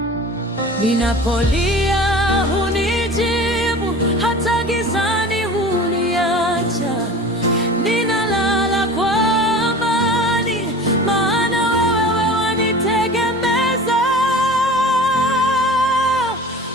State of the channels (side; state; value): both; normal; correlation 0.38